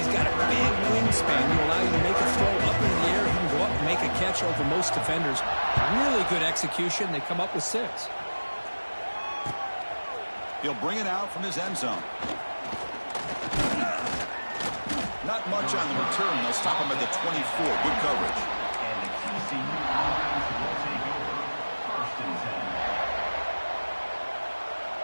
got a big wingspan to allow you to make a throw up into the air. He can go up and make a catch over most defenders. Really good execution. They come up with 6. He'll bring it out from his end zone. Not much on the return. They'll stop him at the 24. Good coverage.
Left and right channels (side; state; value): both; inverted; correlation -1.00